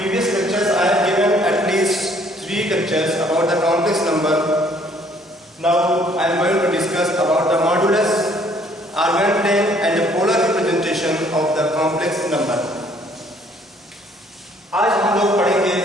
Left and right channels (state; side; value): normal; both; correlation 0.61